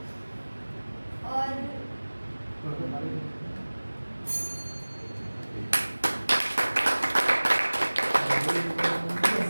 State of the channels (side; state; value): both; inverted; correlation -1.00